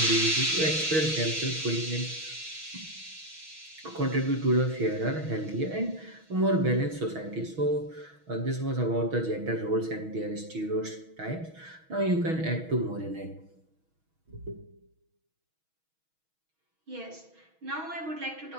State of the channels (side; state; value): left; late; 6.3 ms